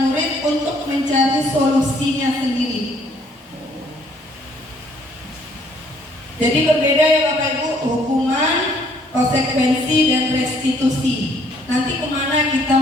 murid untuk mencari solusinya sendiri. Jadi berbeda ya Bapak Ibu, hukuman, konsekuensi, dan restitusi. Nanti kemana kita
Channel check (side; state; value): both; normal; correlation 0.63